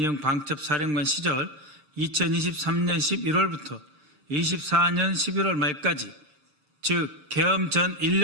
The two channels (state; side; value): late; left; 6.7 ms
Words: 방첩사령관 시절 2023년 11월부터 24년 11월 말까지 즉 계엄 전